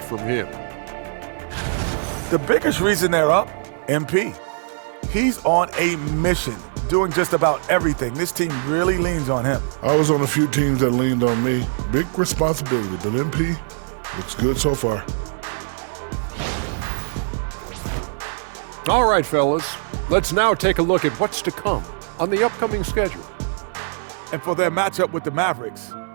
from him. The biggest reason they're up, MP. He's on a mission, doing just about everything. This team really leans on him. I was on a few teams that leaned on me. Big responsibility, but MP looks good so far. All right, fellas. Let's now take a look at what's to come on the upcoming schedule. And for their matchup with the Mavericks,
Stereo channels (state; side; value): silent; left; 62 dB below the other